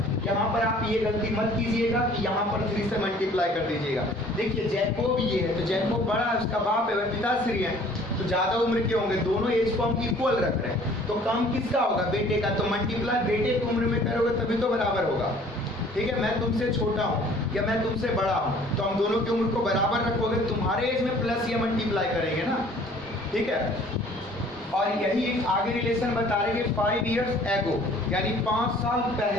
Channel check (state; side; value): normal; both; correlation 0.53